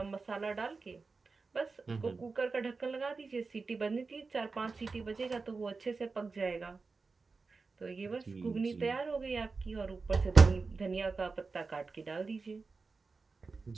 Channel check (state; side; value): quieter; left; 4.3 dB